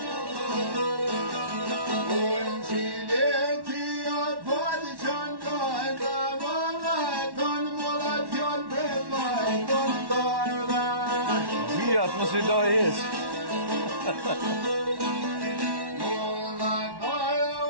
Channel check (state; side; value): late; left; 1.1 ms